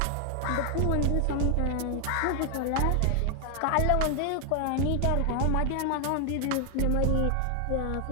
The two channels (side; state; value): both; different; correlation 0.00